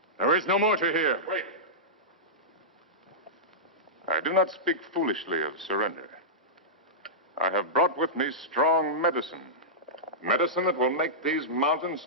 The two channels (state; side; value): normal; both; correlation -0.13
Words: There is no more to hear. Wait. I do not speak foolishly of surrender. I have brought with me strong medicine. Medicine that will make these mountains